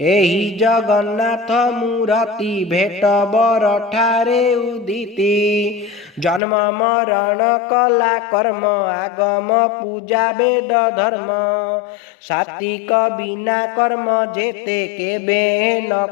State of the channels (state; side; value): drops out; right; at 6.4 s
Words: एही जगन्नाथ मूर्ति भेट बर ठारे उदिति जन्म मरण कला कर्म आगम पूजा वेद धर्म सात्विक बिना कर्म जेते केबे न